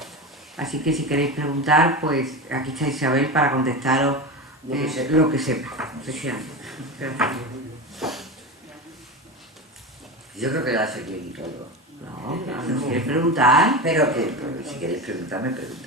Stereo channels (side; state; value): both; normal; correlation 0.23